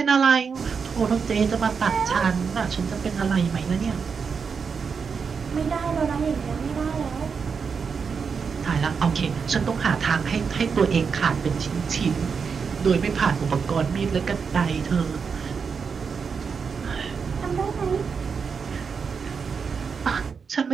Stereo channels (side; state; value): left; quieter; 5.8 dB